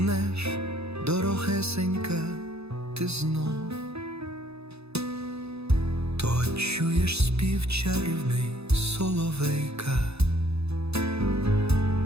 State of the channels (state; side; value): late; left; 0.79 ms